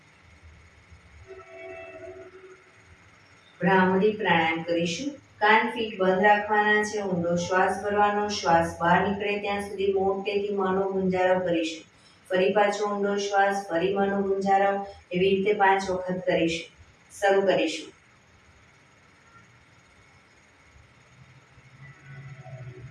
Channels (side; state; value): both; identical; correlation 1.00